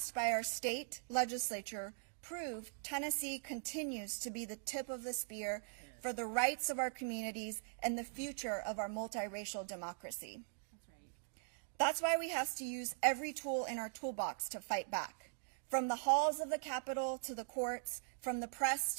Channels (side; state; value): left; silent; digital silence